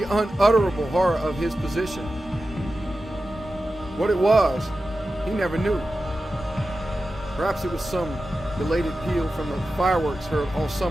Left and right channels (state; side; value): normal; both; correlation 0.93